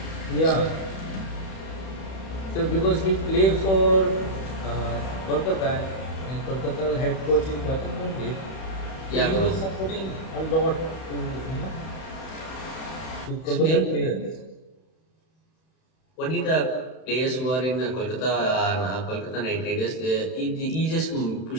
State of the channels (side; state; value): right; late; 31 ms